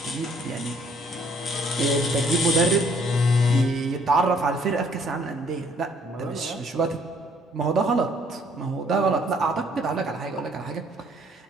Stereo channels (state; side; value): normal; both; correlation 0.63